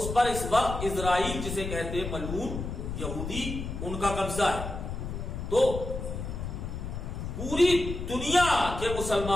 پر اس وقت اسرائیل جسے کہتے ہیں ملعون یہودی ان کا قبضہ ہے۔ تو پوری دنیا کے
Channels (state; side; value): noise; left; rumble, 6 dB below the sound